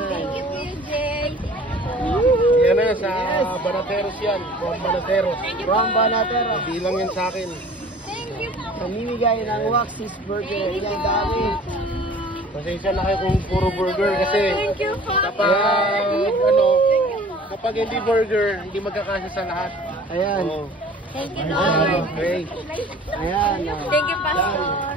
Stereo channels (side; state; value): both; normal; correlation 0.47